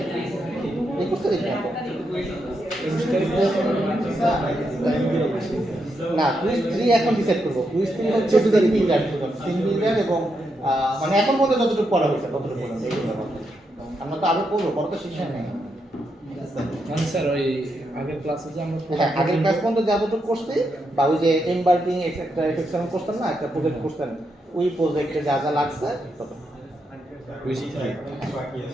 21 তারিখ না 21 তারিখে না কুইজ 3 এখন ডিসাইড করব কুইজ 3 হচ্ছে 14 তারিখ সিঙ্গেল এবং মানে এখন পর্যন্ত যতটুকু পড়া হয়েছে ততটুকু পড়া হয়েছে আমরা তো আরো পড়বো পড়া তো শেষ হয় নাই মানে স্যার ওই আগের ক্লাসে যে আমরা হ্যাঁ আগের ক্লাস পর্যন্ত যতটুকু করছি বা ওই যে এমবার্কিং এক্সেট্রা এফেকশন করতেন না একটা প্রজেক্ট করতেন ওই প্রজেক্টে যা যা লাগছে তত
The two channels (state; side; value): normal; both; correlation 0.82